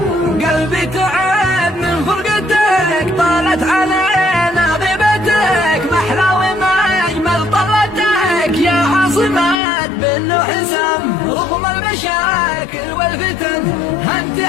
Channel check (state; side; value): drops out; right; at 9.6 s